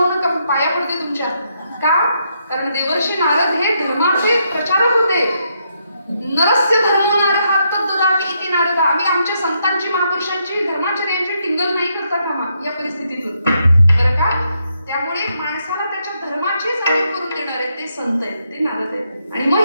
नका, पाया पडते तुमच्या. का? कारण देवर्षी नारद हे धर्माचे प्रचारक होते. नरस्य धर्मो नारः तद्ददाति इति नारद. आम्ही आमच्या संतांची, महापुरुषांची, धर्माचर्यांची टिंगल नाही करता कामा या परिस्थितीतून, बरं का? त्यामुळे माणसाला त्याच्या धर्माची जाणीव करून देणारे ते संत आहेत, ते नारद आहेत. आणि मग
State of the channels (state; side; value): inverted; both; correlation -0.78